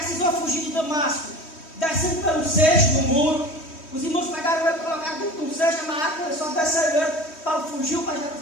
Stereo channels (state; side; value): late; right; 3.1 ms